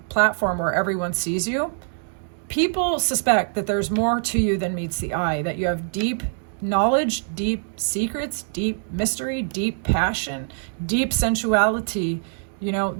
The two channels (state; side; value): silent; left; digital silence